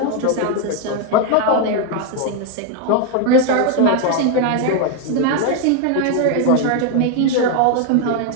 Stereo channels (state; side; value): different; both; correlation 0.01